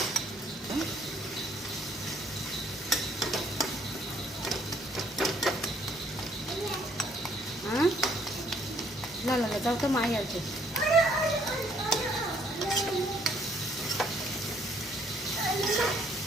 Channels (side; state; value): both; normal; correlation 0.65